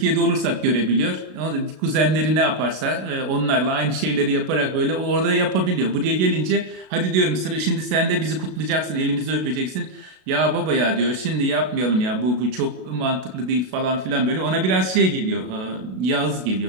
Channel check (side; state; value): left; late; 33 ms